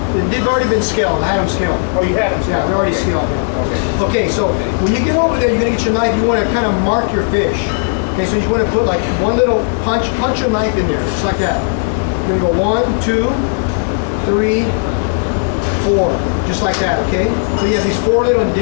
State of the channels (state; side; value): silent; right; digital silence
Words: They've already been scaled. I had them scaled. Oh, you had them? Yeah, they're already scaled. Okay, so when you get over there, you're going to get your knife. You want to kind of mark your fish. Okay, so you want to put like one little punch your knife in there, just like that. You're going to go 1, 2, 3, 4, just like that, okay? So you have these 4 little